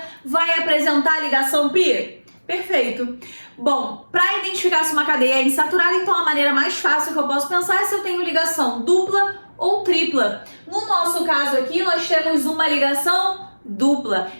vai apresentar ligação pi? Perfeito. Bom, para identificar se uma cadeia é insaturada, então a maneira mais fácil que eu posso pensar é se eu tenho ligação dupla ou tripla. No nosso caso aqui, nós temos uma ligação dupla.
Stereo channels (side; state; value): both; inverted; correlation -1.00